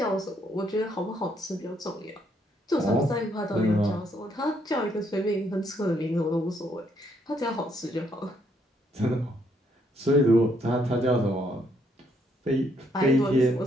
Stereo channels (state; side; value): normal; both; correlation 0.71